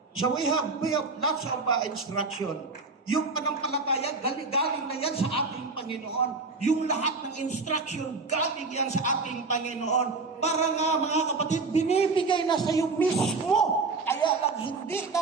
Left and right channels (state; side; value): quieter; left; 3.9 dB